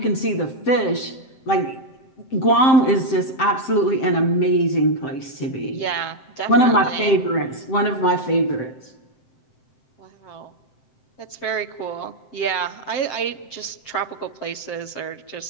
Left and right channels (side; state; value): right; late; 7.6 ms